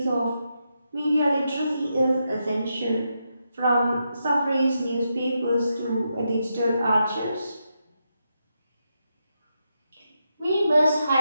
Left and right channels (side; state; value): both; inverted; correlation -0.84